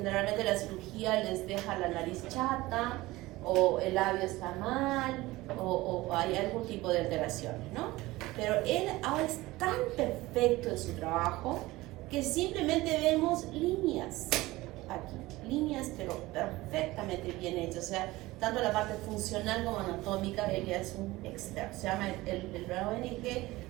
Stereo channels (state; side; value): quieter; left; 19.2 dB